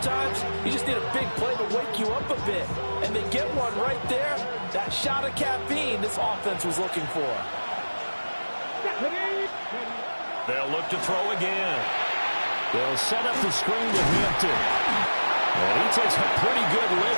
you just need a big play to wake you up a bit. And they get one right there. That shot of caffeine this offense was looking for. They'll look to throw again. They'll set up the screen to Hampton. And he takes a pretty good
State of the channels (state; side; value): inverted; both; correlation -1.00